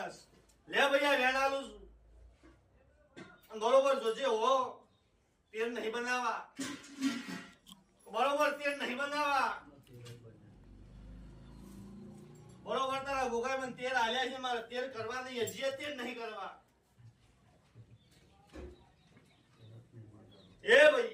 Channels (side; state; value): both; identical; correlation 1.00